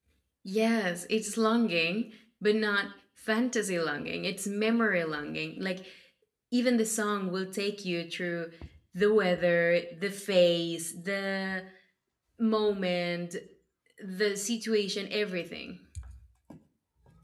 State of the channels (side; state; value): both; identical; correlation 1.00